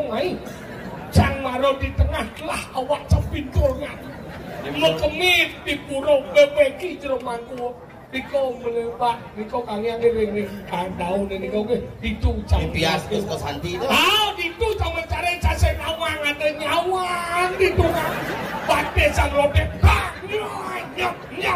ai. Cang maro di tengah lah awak capinturnya. Mekemit di purau bebeki jeromangku. Diko melepak, diko kangen ni daun ni kau ke itu pias ke Santi tu. Ah, itu cuma mencari cacing awang ada nyawang itu kan. Pakai sang robek, nyap.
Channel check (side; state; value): both; identical; correlation 1.00